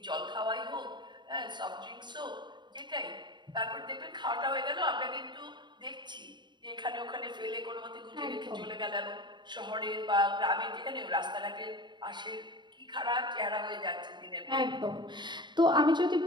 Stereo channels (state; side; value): late; left; 0.22 ms